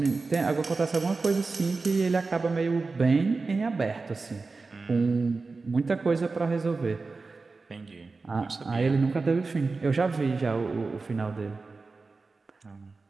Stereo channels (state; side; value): quieter; left; 4.0 dB